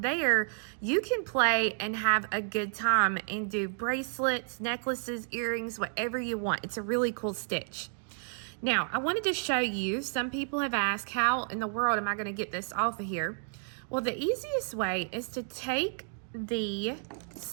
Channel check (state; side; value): silent; left; digital silence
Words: there you can play and have a good time and do bracelets, necklaces, earrings, whatever you want. It's a really cool stitch. Now I wanted to show you, some people have asked, how in the world am I going to get this off of here? Well, the easiest way is to take the